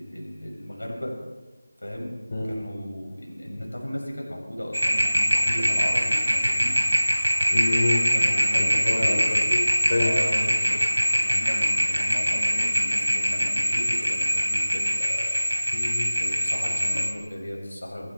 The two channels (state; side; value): inverted; both; correlation -0.99